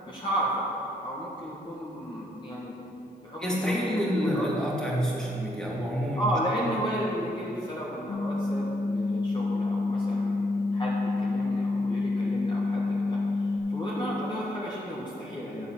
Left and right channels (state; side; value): normal; both; correlation 0.76